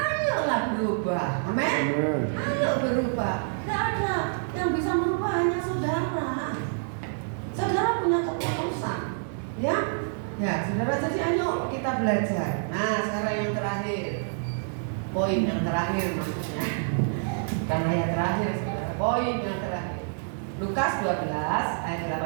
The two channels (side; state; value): left; silent; digital silence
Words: berubah. Amin. Ayo berubah. Enggak ada yang bisa merubah hanya saudara. Saudara punya keputusan, ya? Ya, saudara, jadi ayo kita belajar. Nah, sekarang yang terakhir, poin yang terakhir maksudnya, karena yang terakhir, saudara, poin yang terakhir. Lukas 12 ayat